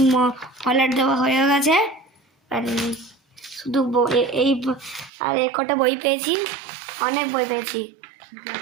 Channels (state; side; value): drops out; left; at 5.1 s